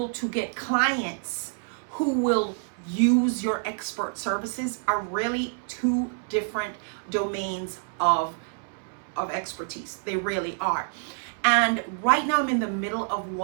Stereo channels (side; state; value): left; silent; 60 dB below the other